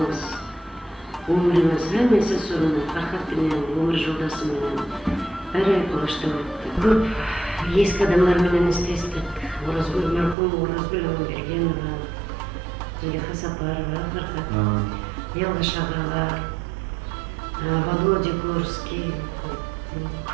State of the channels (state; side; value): drops out; left; at 10.4 s